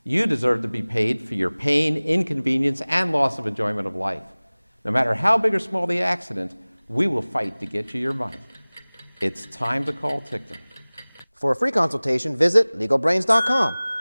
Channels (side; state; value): both; inverted; correlation -1.00